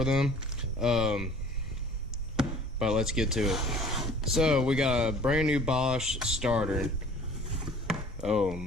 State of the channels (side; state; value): both; normal; correlation 0.50